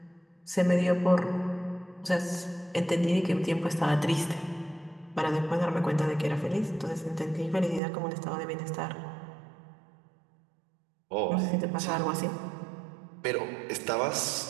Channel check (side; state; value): left; drops out; at 7.8 s